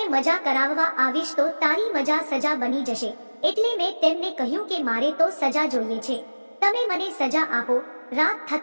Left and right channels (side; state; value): both; inverted; correlation -1.00